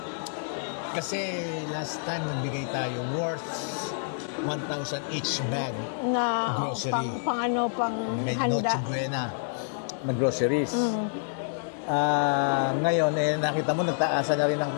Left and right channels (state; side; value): silent; right; digital silence